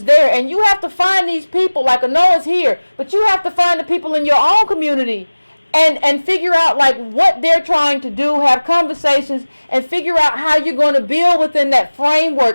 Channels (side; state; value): both; inverted; correlation -1.00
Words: there, and you have to find these people. Like Noah's here, but you have to find the people in your own community and figure out like what they're trying to do, have conversations and figure out how you're going to build within that